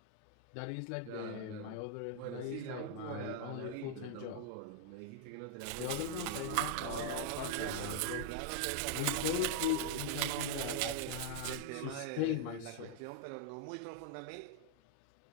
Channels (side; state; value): both; different; correlation -0.01